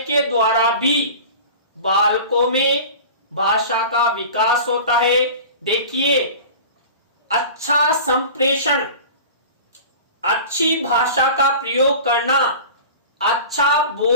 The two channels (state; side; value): inverted; both; correlation -0.37